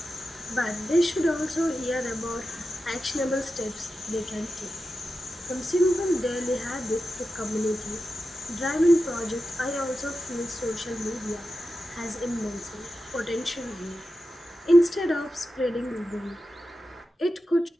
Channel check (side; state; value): both; normal; correlation 0.91